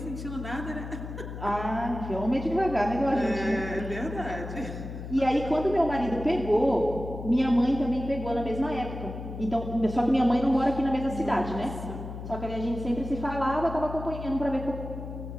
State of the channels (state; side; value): noise; left; hum, 9 dB below the sound